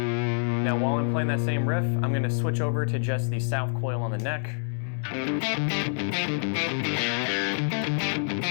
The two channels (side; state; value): right; silent; 60 dB below the other